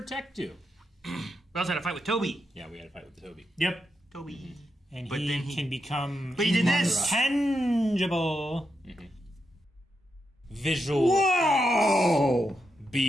you. We also had a fight with Toby. Yeah, we had a fight with Toby. Yep. Toby. And But he then he- can become But he did this! tangible. Visual. Whoa!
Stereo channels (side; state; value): both; normal; correlation 0.85